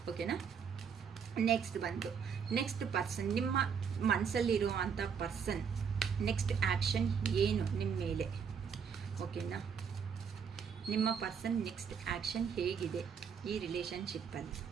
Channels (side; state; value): left; quieter; 6.7 dB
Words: ಓಕೆನಾ, ನೆಕ್ಸ್ಟ್ ಪರ್ಸನ್ ನಿಮ್ಮ ಮನಸ್ಸಲ್ಲಿರೋ ಅಂಥ ಪರ್ಸನ್ ನೆಕ್ಸ್ಟ್ ಆ್ಯಕ್ಷನ್ ಏನು ನಿಮ್ಮ ಮೇಲೆ. ಓಕೆನಾ, ನಿಮ್ಮ ಪರ್ಸನ್ ನೆಕ್ಸ್ಟ್ ಆ್ಯಕ್ಷನ್ ಹೇಗಿದೆ ಈ ರಿಲೇಷನ್ಶಿಪ್ಪಲ್ಲಿ.